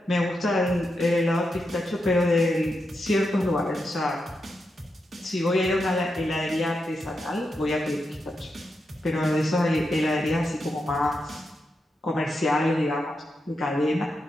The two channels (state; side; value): normal; both; correlation 0.86